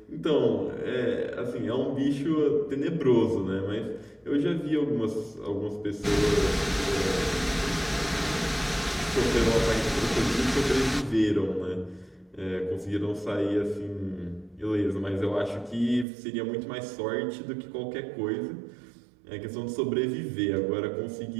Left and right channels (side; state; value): left; drops out; at 16.1 s